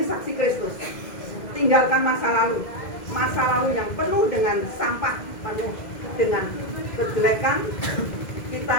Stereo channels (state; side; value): late; right; 2.0 ms